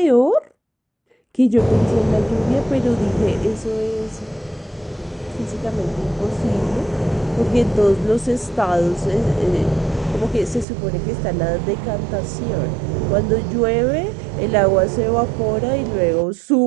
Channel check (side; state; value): left; drops out; at 10.7 s